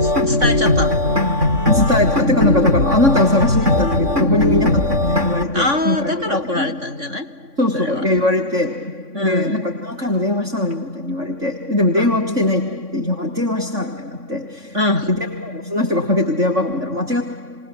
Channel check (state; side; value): late; left; 3.5 ms